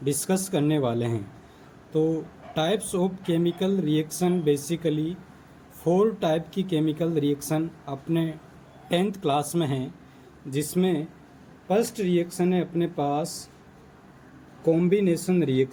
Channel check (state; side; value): identical; both; correlation 1.00